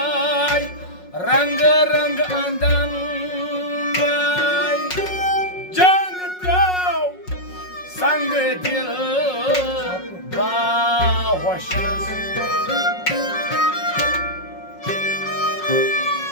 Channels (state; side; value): late; right; 5.5 ms